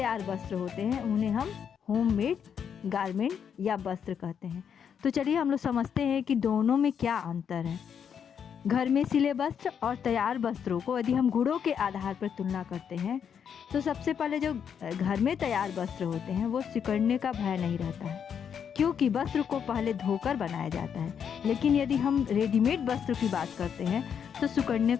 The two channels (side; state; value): right; quieter; 7.7 dB